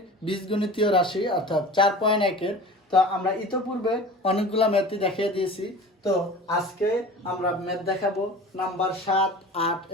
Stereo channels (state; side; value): normal; both; correlation 0.38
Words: বীজগণিতীয় রাশি অর্থাৎ 4.1-এর। তো আমরা ইতোপূর্বে অনেকগুলো ম্যাথই দেখিয়ে দিয়েছি। তো আজকে আমরা ম্যাথ দেখাবো নাম্বার 7, 8